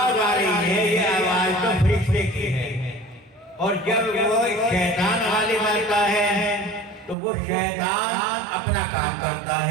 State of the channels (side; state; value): left; drops out; at 7.2 s